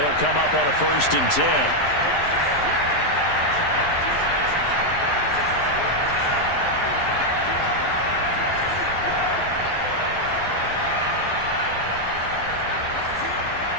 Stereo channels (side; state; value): right; late; 11 ms